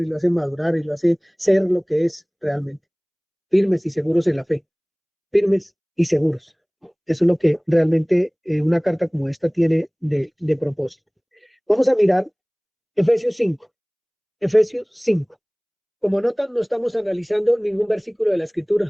lo hace madurar y lo hace ser lo que es realmente, firmes y seguros en la fe, firmes y seguros. Eso es lo que realmente una carta como esta tiene de propósito. Vamos a mirar Efesios 5. Efesios 5. Como notan, no estamos analizando ningún versículo de la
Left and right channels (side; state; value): both; identical; correlation 1.00